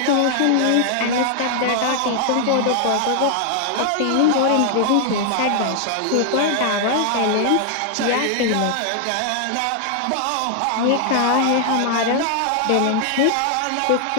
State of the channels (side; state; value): both; different; correlation 0.00